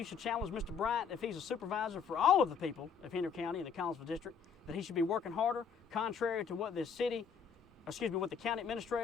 should challenge Mr. Bryant, if he's a supervisor for all of the people of Henry County and the Collinsville District, that he should be working harder, contrary to what what the county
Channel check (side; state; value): right; quieter; 6.6 dB